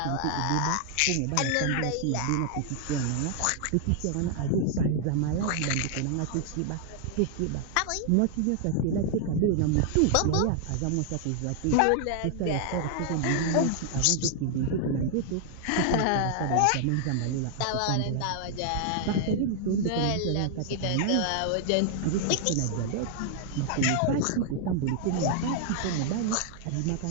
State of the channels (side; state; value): both; different; correlation 0.00